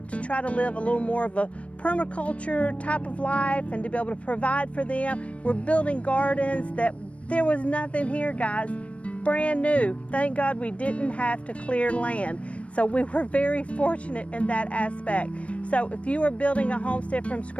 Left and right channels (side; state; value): right; late; 0.063 ms